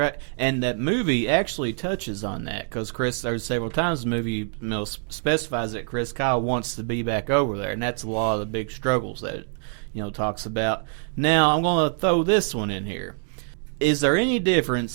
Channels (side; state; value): left; silent; 60 dB below the other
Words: And that movie actually touches on that because there's several times the movie specifies that Chris Kyle wants to be back over there, and that's a lot of the big struggles that it talks about. Now, I'm going to throw this one in here. Is there any